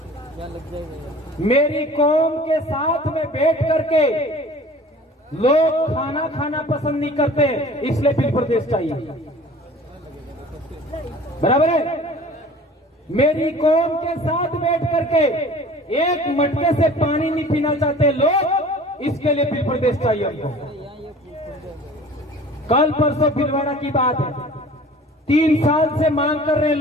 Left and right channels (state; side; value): normal; both; correlation 0.45